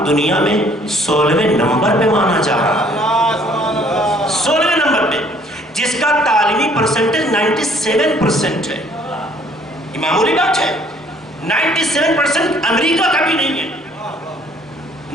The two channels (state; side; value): normal; both; correlation 0.60